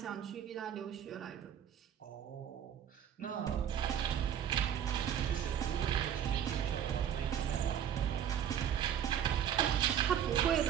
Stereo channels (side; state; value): left; quieter; 9.4 dB